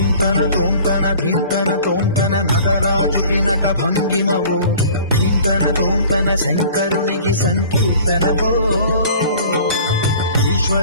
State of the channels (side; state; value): both; inverted; correlation -0.47